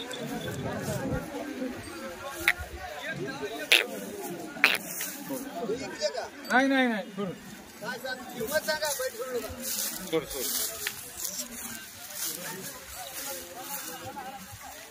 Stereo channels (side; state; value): both; identical; correlation 1.00